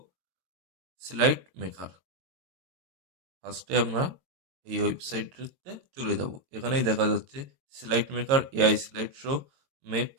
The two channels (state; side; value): late; left; 22 ms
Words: স্লাইড মেকার। ফার্স্টে আমরা এই ওয়েবসাইটটিতে চলে যাব। এখানেই দেখা যাচ্ছে slide maker, AI slide show,